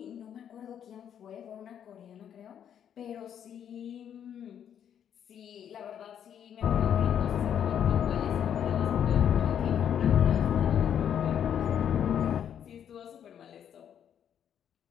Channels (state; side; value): quieter; right; 9.1 dB